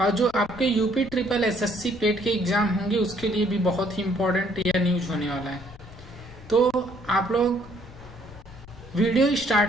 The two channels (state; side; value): noise; left; rumble, 20 dB below the sound